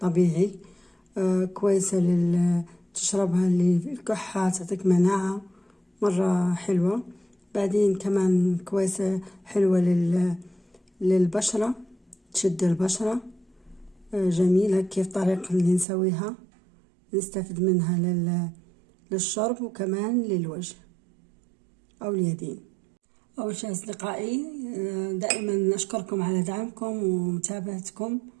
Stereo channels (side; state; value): left; drops out; at 15.9 s